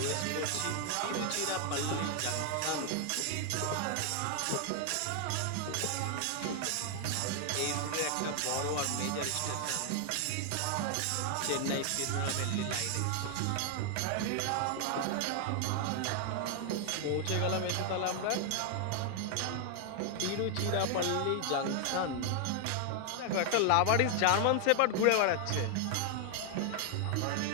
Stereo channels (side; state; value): both; different; correlation 0.00